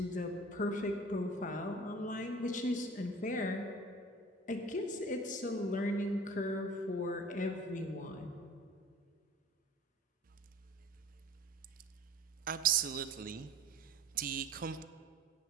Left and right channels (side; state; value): both; normal; correlation 0.44